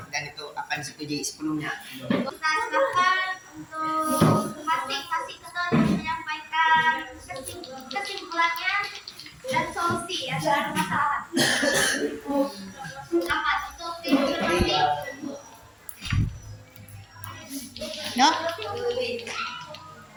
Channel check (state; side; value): identical; both; correlation 1.00